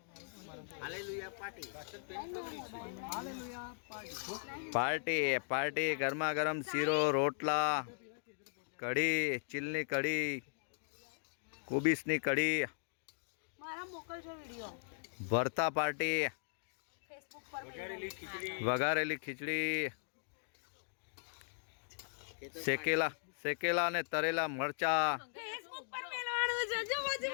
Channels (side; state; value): right; silent; digital silence